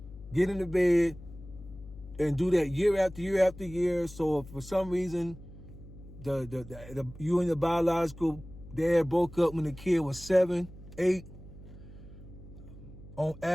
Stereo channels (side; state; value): left; noise; hum, 17 dB below the sound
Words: get in the bed, and do that year after year after year. So if for some reason you and your biological dad broke up when the kid was 7, 8, on